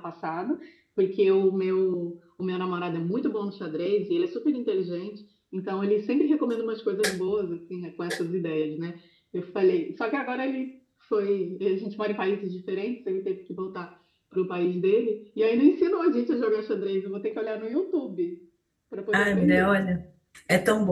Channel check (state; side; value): identical; both; correlation 1.00